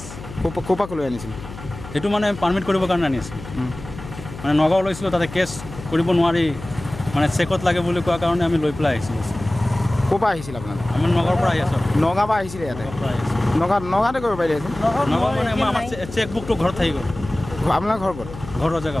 কোপা লৈ আনিছিল? সেইটো মানে পাৰ্মিট কৰিবৰ কাৰণে আনি আছিলোঁ। মানে নগাঁও লৈছিলোঁ, তাতে কেছ কৰিব নোৱাৰি, মানে চেকত লাগে বুলি কোৱাৰ কাৰণে আমি লৈ পেলাই আহিছিলোঁ। ক'ৰপৰা আহিছিল আপোনালোক? আমি নগাঁৱৰ পৰা আহি আছোঁ। নগাঁৱৰ পৰা আহিছিলে ইয়াতে? নগাঁৱতে কৰিব পাৰিলে? নগাঁও মানে আমাৰ চেক বুকটো ঘৰত থাকি গ'ল। আপোনাৰ ঘৰ ক'ত? ঘৰ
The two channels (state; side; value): noise; left; hum, 13 dB below the sound